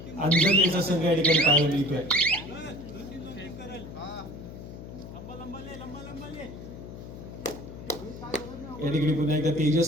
अंजरलेचा संघ या ठिकाणी पाहायला मिळतोय. या ठिकाणी पुन्हा एकदा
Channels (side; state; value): left; noise; hum, 12 dB below the sound